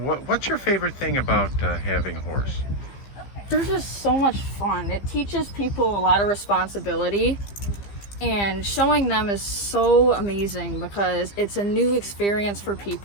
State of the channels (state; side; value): late; right; 15 ms